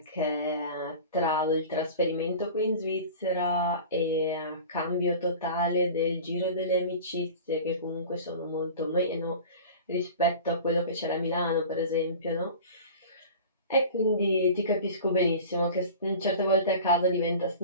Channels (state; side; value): inverted; both; correlation -0.38